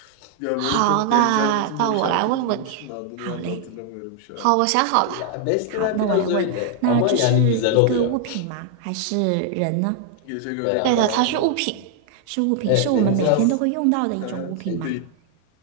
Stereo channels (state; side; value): different; both; correlation 0.00